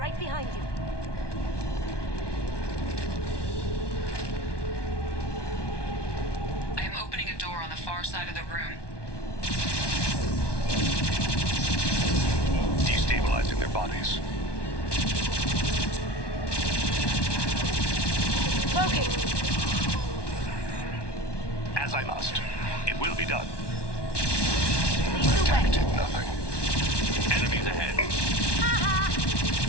behind you. I am opening a door on the far side of the room. Destabilizing their bodies. Located. As I must. It will be done. Lead the Attack way. did nothing. Enemies ahead.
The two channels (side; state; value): right; late; 1.2 ms